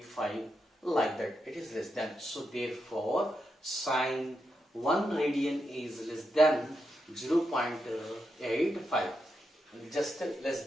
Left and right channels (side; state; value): both; normal; correlation 0.85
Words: like that. It is less than. So therefore sine 1 radian is less than 0.85, just less